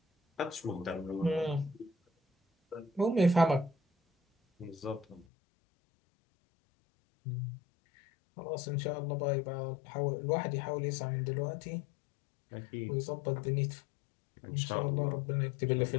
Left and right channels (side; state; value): right; drops out; at 5.2 s